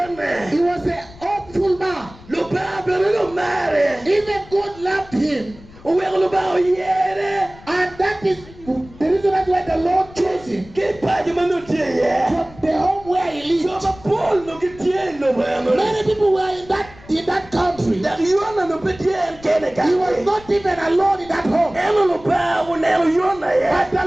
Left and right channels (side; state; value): left; noise; rumble, 21 dB below the sound